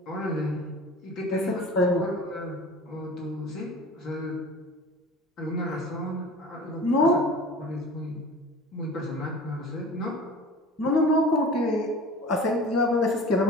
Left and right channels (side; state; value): both; normal; correlation 0.40